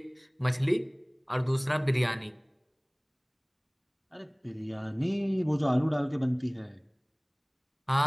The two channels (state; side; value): identical; both; correlation 1.00